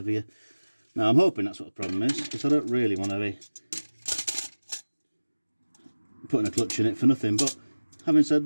Now I'm hoping that's what the problem is, because I don't really want to be putting a clutch in it for nothing. But having said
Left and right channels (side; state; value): both; inverted; correlation -1.00